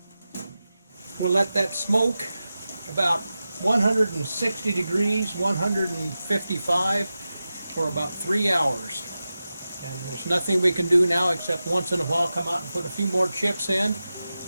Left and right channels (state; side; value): inverted; both; correlation -0.93